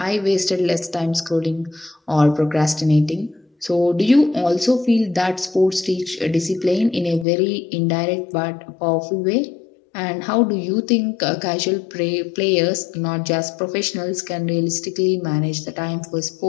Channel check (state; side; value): drops out; right; at 7.2 s